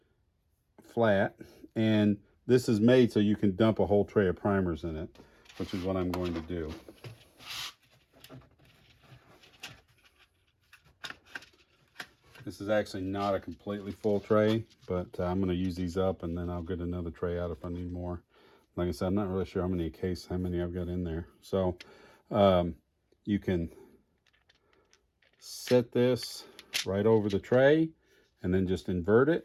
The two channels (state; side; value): identical; both; correlation 1.00